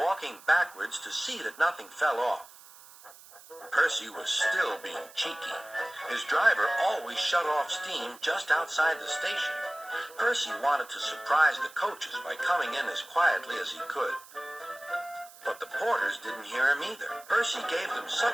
backwards to see that nothing fell off. Percy was still being cheeky. His driver always shut off steam just outside the station. Percy wanted to surprise the coaches by coming in as quietly as he could. But the porters didn't hear him either. Percy gave them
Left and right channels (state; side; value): noise; right; hiss, 21 dB below the sound